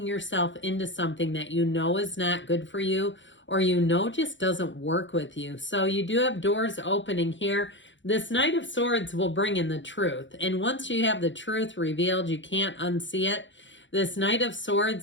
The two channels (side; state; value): right; late; 0.54 ms